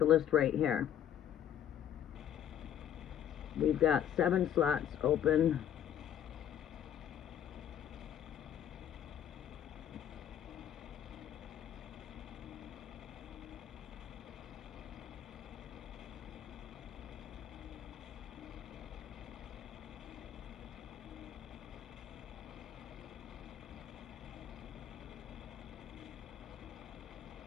list right here. We've got 7 slots open.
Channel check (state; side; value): quieter; right; 10.1 dB